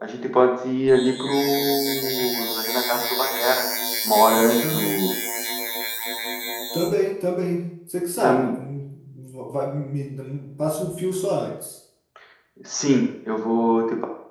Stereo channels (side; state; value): both; identical; correlation 1.00